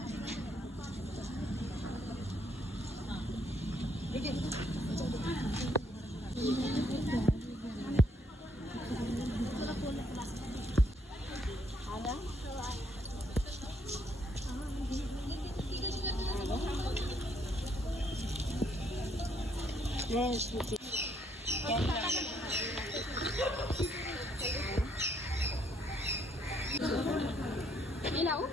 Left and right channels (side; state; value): both; normal; correlation 0.70